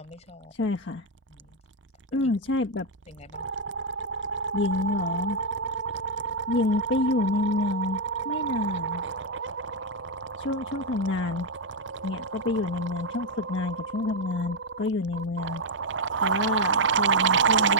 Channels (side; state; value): both; normal; correlation 0.00